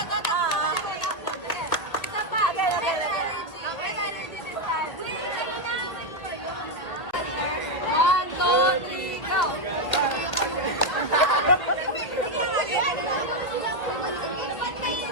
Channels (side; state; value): right; late; 1.8 ms